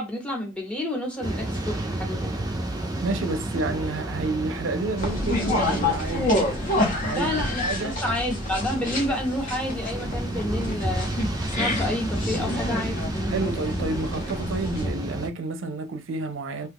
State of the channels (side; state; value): both; normal; correlation 0.52